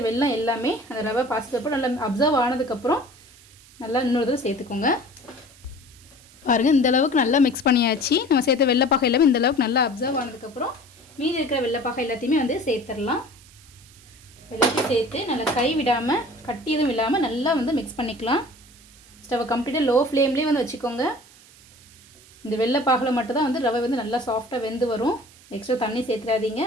வெல்லம் எல்லாமே அந்த ரவை பாசிப்பருப்பு நல்லா அப்சர்வ் ஆனதுக்கப்புறம் நல்லா இன்னொரு தடவை சேர்த்துக்கோங்க. பாருங்கள் இந்த அளவுக்கு நல்லா மிக்ஸ் பண்ணியாச்சு. நம்ம சேர்த்த வெள்ளைப்பாகை எல்லாமே இந்த அளவுக்கு நல்லா அப்சர்வ் ஆனதுக்கப்புறம் மீதி இருக்கிற வெள்ளைப்பாகை எல்லாத்தையுமே வந்து சேர்த்துடலாம். எல்லாத்தையும் சேர்த்து நல்லா கை விடாமல் கட்டி எதுவும் இல்லாமல் நல்லா வந்து மிக்ஸ் பண்ணிக்கலாம். ஸ்டவ்வை கம்ப்ளீட்டாக லோ ஃப்ளேம்லேயே வந்து வச்சுக்கோங்க. இந்த வெள்ளைப்பாகில் மட்டும் தான் வந்து ரவை வந்து நல்லா சாஃப்டாக வெந்து வரும். எக்ஸ்ட்ரா தண்ணி சேர்த்துடாதீங்க,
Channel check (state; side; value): noise; right; hiss, 24 dB below the sound